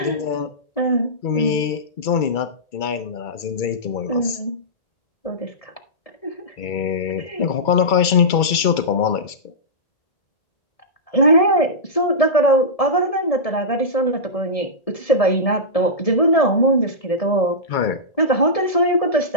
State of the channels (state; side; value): late; right; 2.3 ms